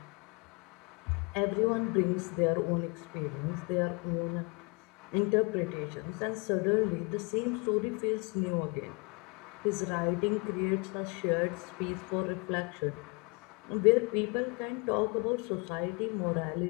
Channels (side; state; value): right; quieter; 31.9 dB